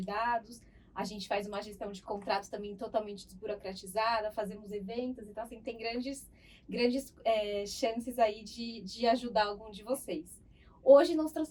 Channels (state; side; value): identical; both; correlation 1.00